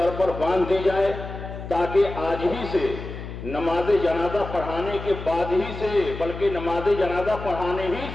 پر باندھ دی جائے، تاکہ آج ہی سے نماز جنازہ پڑھانے کے بعد ہی سے، بلکہ نماز جنازہ پڑھانے ہی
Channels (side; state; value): left; noise; hum, 10 dB below the sound